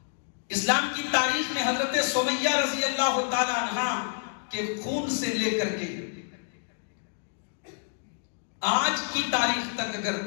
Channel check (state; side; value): silent; right; 59 dB below the other